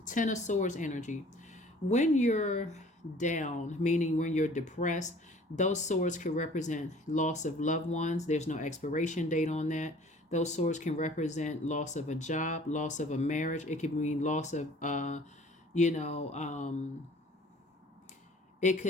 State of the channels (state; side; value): normal; both; correlation 0.51